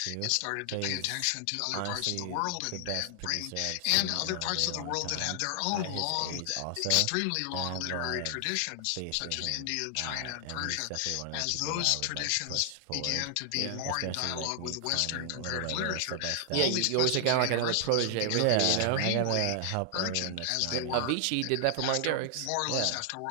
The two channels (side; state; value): both; different; correlation 0.00